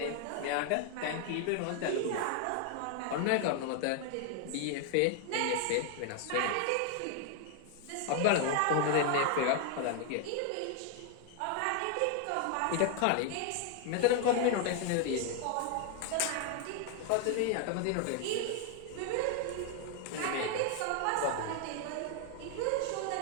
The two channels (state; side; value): different; both; correlation 0.00